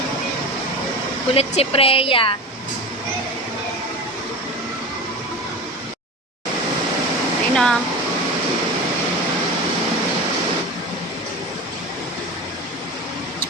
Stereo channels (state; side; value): normal; both; correlation 0.29